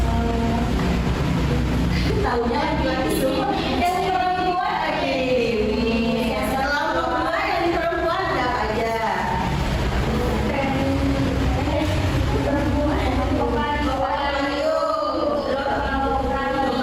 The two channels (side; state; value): both; identical; correlation 1.00